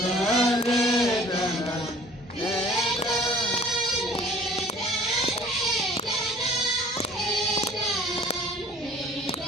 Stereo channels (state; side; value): normal; both; correlation 0.51